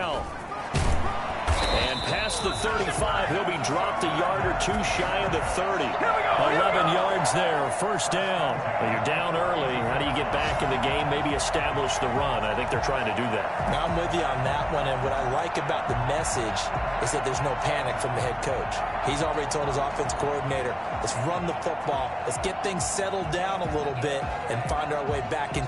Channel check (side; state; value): both; identical; correlation 1.00